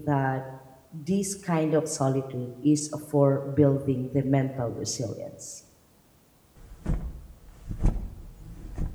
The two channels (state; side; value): identical; both; correlation 1.00